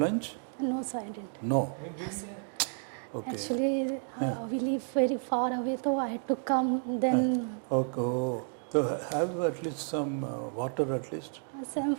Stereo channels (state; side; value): silent; left; 57 dB below the other